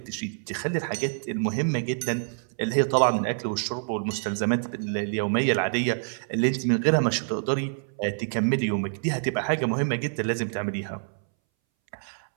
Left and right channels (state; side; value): silent; left; 60 dB below the other